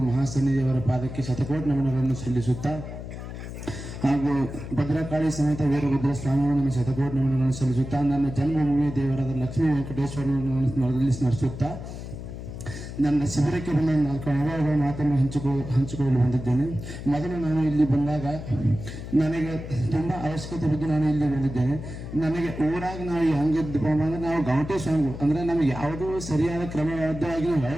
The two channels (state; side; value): noise; left; hum, 9 dB below the sound